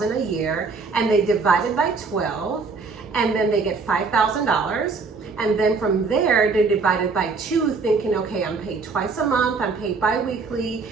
a year and they divide it by 12, and then they get $5,000. And then from there, they divide it by 2, thinking, okay, I'm paid twice a month, I'm paid bi-weekly,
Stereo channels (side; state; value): left; quieter; 4.5 dB